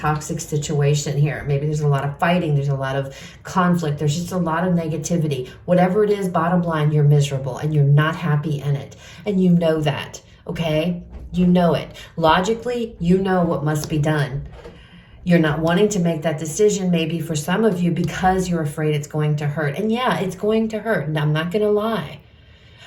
situation here. Maybe there's a lot of fighting. There's a lot of conflict. There's just a lot of negativity. Whatever it is, bottom line, you're miserable and you're not happy in it. And you know that, okay? You know it. Logically, you know what must be done. You're not wanting to make that decision, maybe for some of you, because you're afraid it's going to hurt. And yeah, it's going to hurt. And I'm not going to lie.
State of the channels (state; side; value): identical; both; correlation 1.00